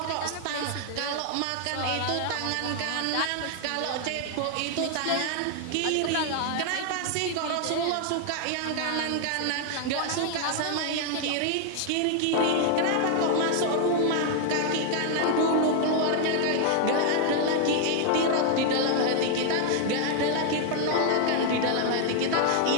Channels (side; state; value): both; different; correlation 0.00